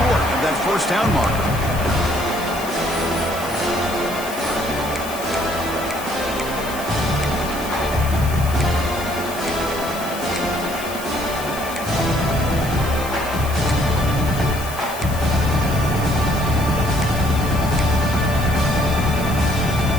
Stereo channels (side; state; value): left; noise; hiss, 12 dB below the sound